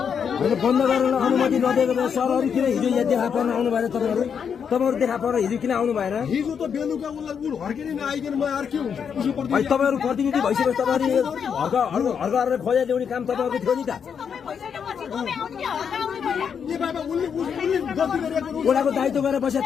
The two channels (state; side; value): quieter; right; 7.1 dB